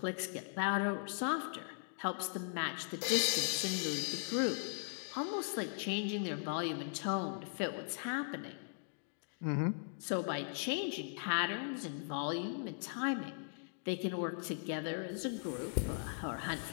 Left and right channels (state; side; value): silent; right; digital silence